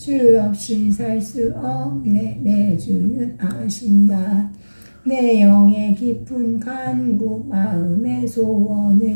없이 살 수 없네 내 주는 아신다 내 영의 깊은 간구 마음의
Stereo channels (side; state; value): both; inverted; correlation -1.00